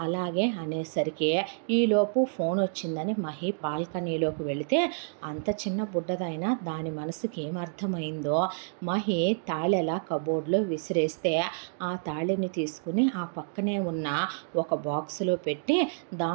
అలాగే అనేసరికి ఈలోపు ఫోన్ వచ్చిందని మహి బాల్కనీలోకి వెళితే అంత చిన్న బుడ్డదైనా దాని మనసుకి ఏమర్థమైందో మహి తాళెలా కబోర్డ్లో విసిరేస్తే ఆ తాళిని తీసుకుని ఆ పక్కనే ఉన్న ఒక బాక్సులో పెట్టి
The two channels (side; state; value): left; silent; digital silence